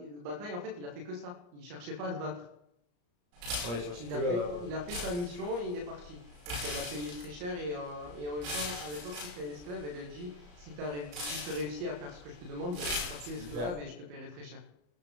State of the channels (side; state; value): left; late; 34 ms